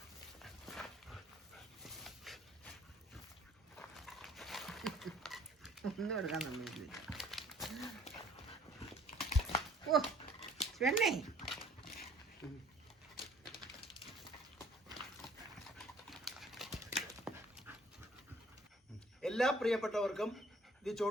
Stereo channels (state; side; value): normal; both; correlation 0.56